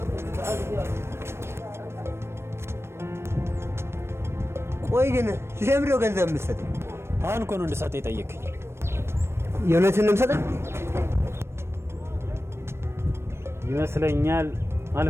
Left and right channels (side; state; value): left; late; 0.12 ms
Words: ቆይ ግን ለምንድን ነው ገንዘብ የምትሰጠኝ? አሁን እኮ ነው እንድሰጥ የጠየቅኝ። የእውነትን ነው የምሰጠኝ ይመስለኛል።